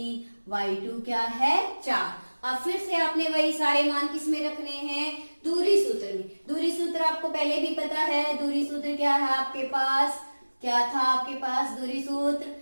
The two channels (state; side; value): inverted; both; correlation -1.00